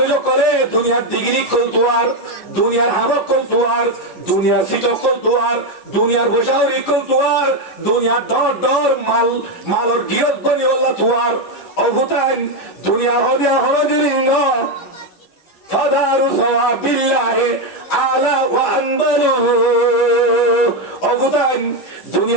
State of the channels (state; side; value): late; right; 11 ms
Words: করে দুনিয়ার ডিগ্রি কল তোয়ার দুনিয়ার হামক কল তোয়ার দুনিয়ার সিটক কল তোয়ার দুনিয়ার বসাউরি কল তোয়ার দুনিয়ার দর মালর গিয়ত বনি বললা তোয়ার অভুতান দুনিয়া হদিয়া হরদিলিঙ্গ ফাদারু সওয়াবিল্লাহি আলা ওয়া আনবালু অভুতান